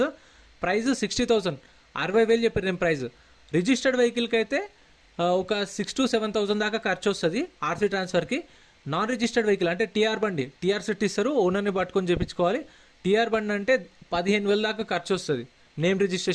ప్రైస్ 60,000 60,000 చెప్పారు నేను ప్రైస్ రిజిస్టర్డ్ వెహికల్కి అయితే ఒక 6,000 to 7,000 దాకా ఖర్చు వస్తుంది ఆర్సీ ట్రాన్స్ఫర్కి నాన్ రిజిస్టర్డ్ వెహికల్ అంటే టీఆర్ బండి టీఆర్ సెట్ ఇస్తారు ఓనర్ని పట్టుకొని చేయించుకోవాలి టీఆర్ బండి అంటే 15,000 దాకా ఖర్చు వస్తుంది నేమ్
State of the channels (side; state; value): both; identical; correlation 1.00